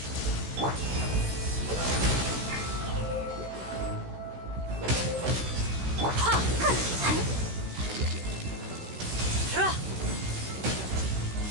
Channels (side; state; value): left; late; 16 ms